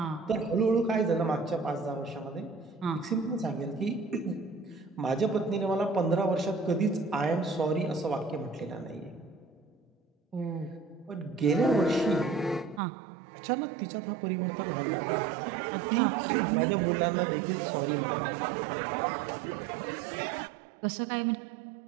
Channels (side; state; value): left; drops out; at 12.8 s